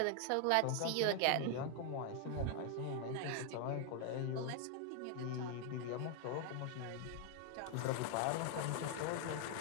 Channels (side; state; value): both; different; correlation 0.00